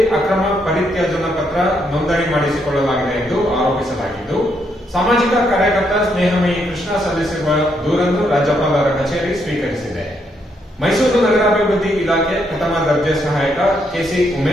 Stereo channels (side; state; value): both; normal; correlation 0.76